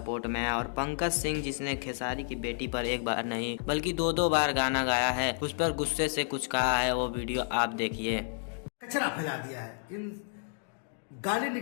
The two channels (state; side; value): silent; right; digital silence